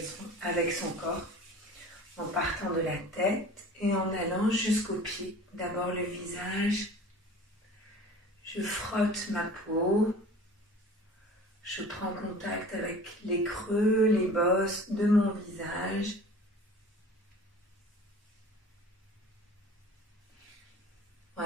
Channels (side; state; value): both; normal; correlation 0.43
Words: son corps en partant de la tête et en allant jusqu'aux pieds. D'abord le visage. Je frotte ma peau, je prends contact avec les creux, les bosses de mon visage.